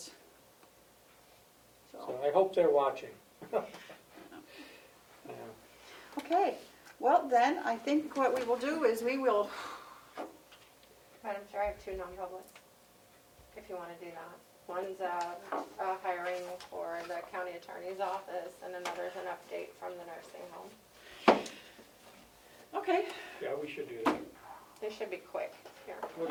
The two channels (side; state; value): both; identical; correlation 1.00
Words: So I hope they're watching. Yeah. Okay, well then, I think what we will do is we will, Madam Chair, I have 2 non-publics, if you want to do that. One's a hiring for the county attorney's office, and another is an update from the nursing home. we should do that. They should be quick. Here.